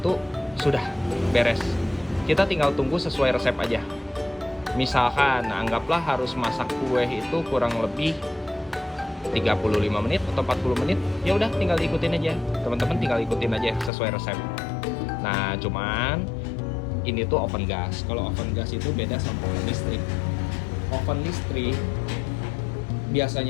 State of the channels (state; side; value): drops out; right; at 13.9 s